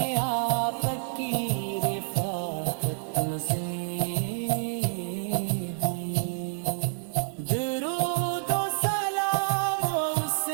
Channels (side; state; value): left; silent; 58 dB below the other